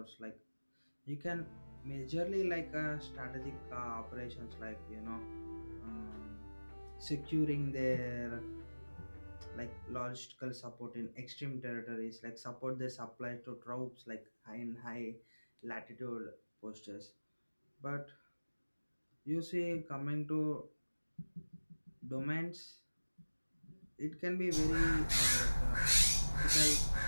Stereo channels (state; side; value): inverted; both; correlation -1.00